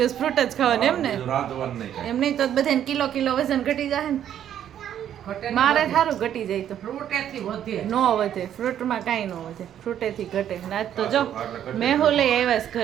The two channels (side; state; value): left; quieter; 10.3 dB